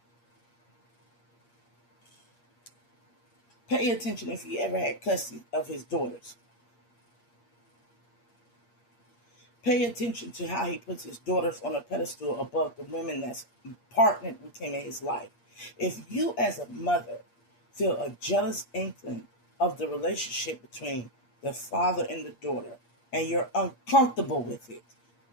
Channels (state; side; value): late; right; 8.5 ms